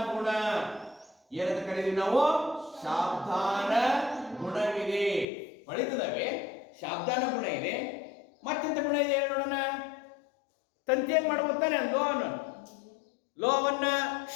ಗುಣ. ಏನಂತ ಕರೀತೀವಿ ನಾವು? ಶಾಬ್ದಾನ ಗುಣವಿದೆ. ಹೊಳಿತದವೆ, ಶಾಬ್ದಾನ ಗುಣ ಇದೆ. ಮತ್ತೆಂತ ಗುಣ ಇದೆ ಹೇಳಿ ನೋಡೋಣ. ತಂತಿ ಏನ್ ಮಾಡ್ಬೋತಾನೆ? ಲೋಹವನ್ನ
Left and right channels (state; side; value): drops out; right; at 5.2 s